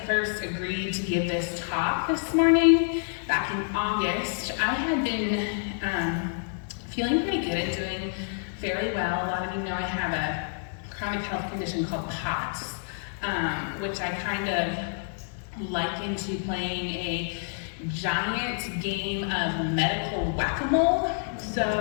first agreed to give this talk this morning, back in August, I had been feeling pretty good and doing fairly well. A lot of you know I have a chronic health condition called POTS, which I kind of liken to playing a giant game of medical whack-a-mole.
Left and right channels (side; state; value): right; silent; 59 dB below the other